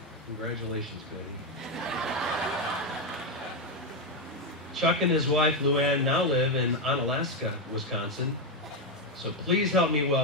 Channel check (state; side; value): normal; both; correlation 0.06